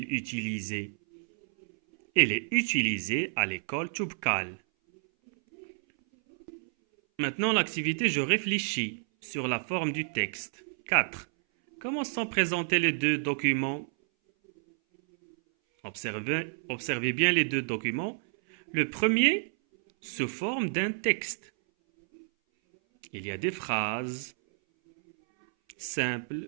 utilisé? Il est utilisé à l'école Toubkal. Maintenant, l'activité, je réfléchis sur la forme du texte. 4. Comment sont présentés les deux documents? Observez bien les deux documents. Le premier se forme d'un texte. Il y a des phrases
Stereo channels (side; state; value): left; silent; 58 dB below the other